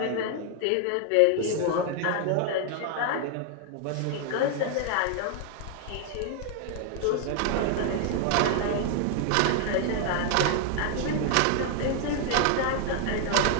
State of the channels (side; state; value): both; different; correlation 0.00